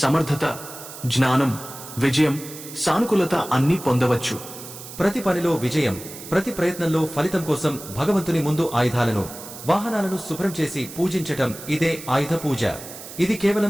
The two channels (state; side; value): noise; right; hiss, 13 dB below the sound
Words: జ్ఞానం, విజయం, సానుకూలత అన్నీ పొందవచ్చు. ప్రతి పనిలో విజయం, ప్రతి ప్రయత్నంలో ఫలితం కోసం భగవంతుని ముందు ఆయుధాలను, వాహనాలను శుభ్రం చేసి పూజించటం ఇదే ఆయుధ పూజ. ఇది